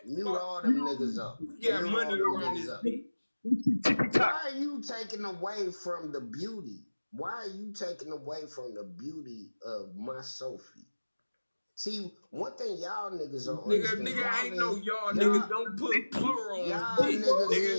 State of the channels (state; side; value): inverted; both; correlation -1.00